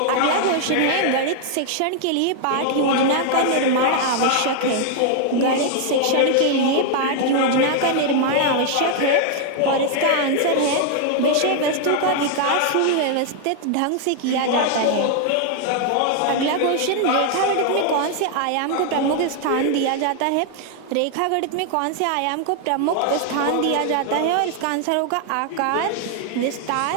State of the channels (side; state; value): both; different; correlation 0.00